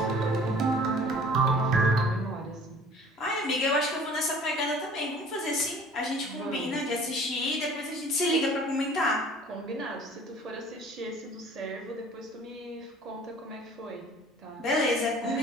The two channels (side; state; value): both; normal; correlation 0.49